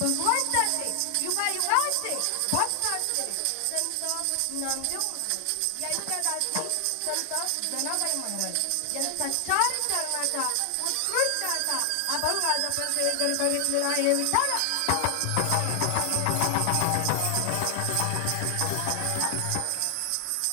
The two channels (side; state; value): both; different; correlation 0.00